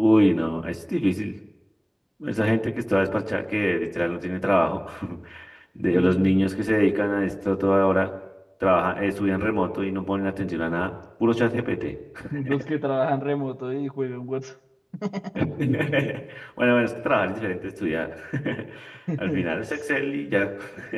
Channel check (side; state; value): both; identical; correlation 1.00